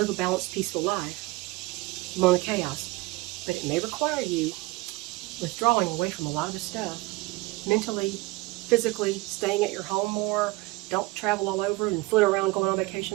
a balanced, peaceful life among the chaos, but it may require you withdrawing away from a lot of the stuff, mentally, physically, staying at your home more. Don't travel all over and flit around going on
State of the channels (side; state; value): left; quieter; 21.9 dB